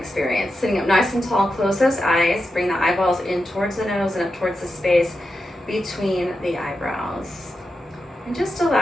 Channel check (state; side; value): normal; both; correlation 0.89